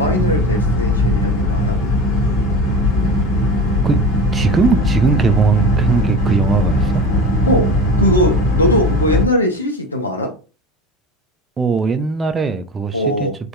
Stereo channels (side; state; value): both; normal; correlation 0.30